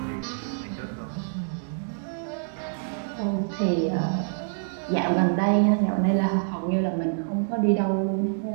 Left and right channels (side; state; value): left; silent; digital silence